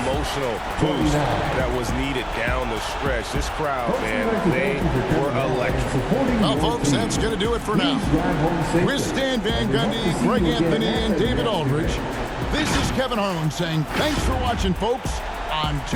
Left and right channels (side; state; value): both; identical; correlation 1.00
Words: boost that was needed down the stretch. This crowd, man, they were electric. Well, folks, that's going to do it for now. With Stan Van Gundy, Greg Anthony, and David Aldridge, this is Kevin Harlan saying thanks for watching, folks, on